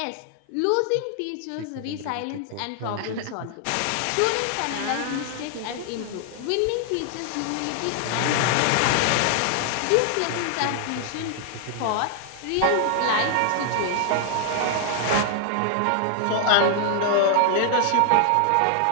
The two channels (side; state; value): both; different; correlation 0.00